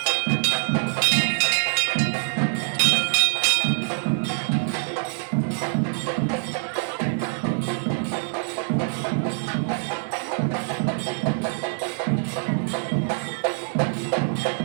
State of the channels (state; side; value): silent; left; digital silence